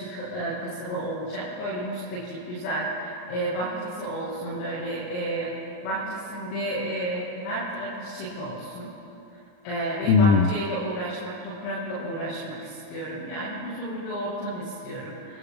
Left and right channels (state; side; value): late; right; 39 ms